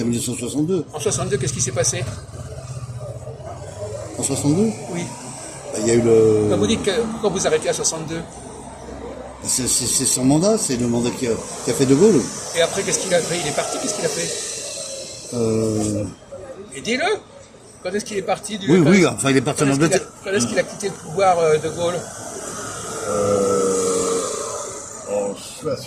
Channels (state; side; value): identical; both; correlation 1.00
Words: 1962. En 62, qu'est-ce qui s'est passé? En 62, Oui. bah, il y a eu le. Quand vous dites que pourquoi vous arrêtez à 62? C'est son mandat, c'est le mandat qui a fait De Gaulle. Et après, qu'est-ce qu'il a fait? Il est parti, qu'est-ce qu'il a fait? Et dis-le! Quand est-ce qu'il est parti du... Oui, quand- oui, enfin il est parti en Quand Angleterre. est-ce qu'il a quitté le pouvoir, De Gaulle? En